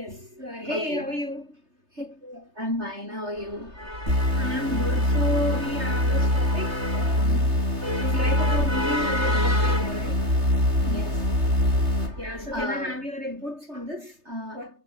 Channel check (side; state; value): left; late; 3.3 ms